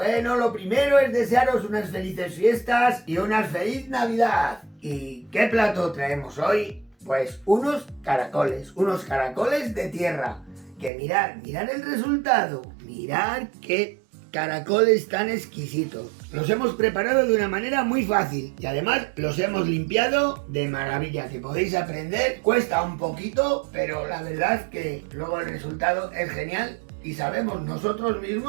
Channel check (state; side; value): drops out; left; at 10.9 s